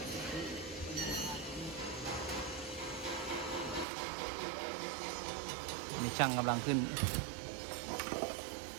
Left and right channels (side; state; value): left; drops out; at 3.9 s